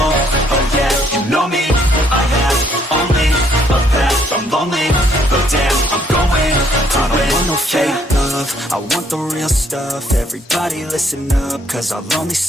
oh yeah, you know me, I have only a path, I'm lonely, but damn, I'm going, I don't want no fake love, I want the real stuff. Everybody listen up, cause I'll only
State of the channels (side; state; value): both; normal; correlation 0.67